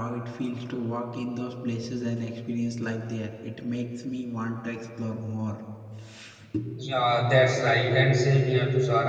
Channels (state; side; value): identical; both; correlation 1.00